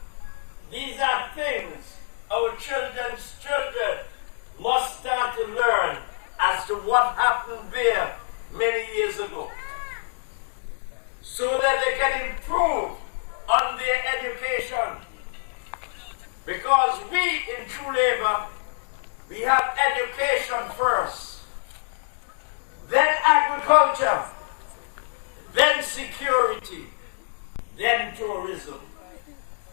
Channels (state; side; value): silent; right; digital silence